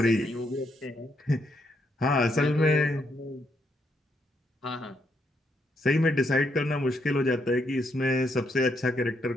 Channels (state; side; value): normal; both; correlation 0.77